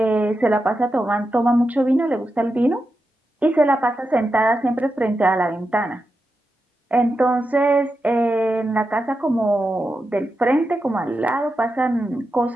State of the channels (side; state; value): both; normal; correlation 0.89